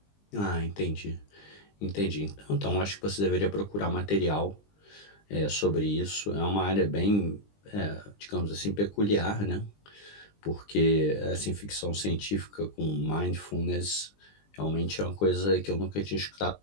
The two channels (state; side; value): late; right; 20 ms